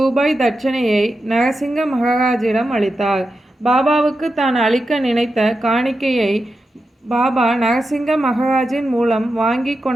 தட்சணையை நரசிங்க மகராஜிடம் அளித்தார். பாபாவுக்கு தான் அளிக்க நினைத்த காணிக்கையை பாபா நரசிங்க மகராஜின் மூலம் வாங்கி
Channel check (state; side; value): normal; both; correlation 0.89